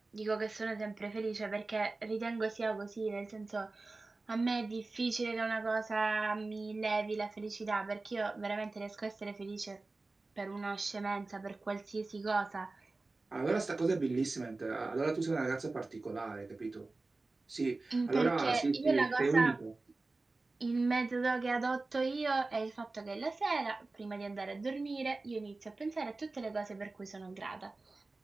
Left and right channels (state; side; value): quieter; left; 3.4 dB